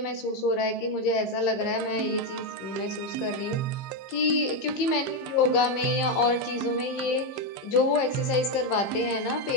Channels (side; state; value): right; late; 15 ms